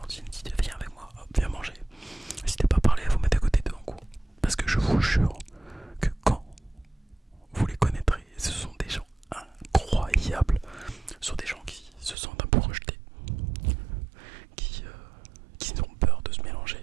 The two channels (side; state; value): left; drops out; at 12.2 s